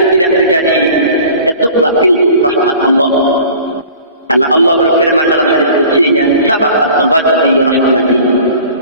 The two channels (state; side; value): inverted; both; correlation -0.45